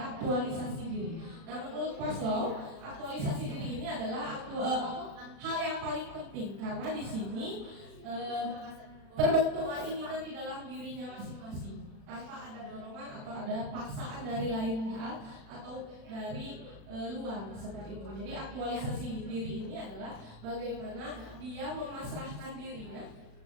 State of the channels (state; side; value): late; left; 36 ms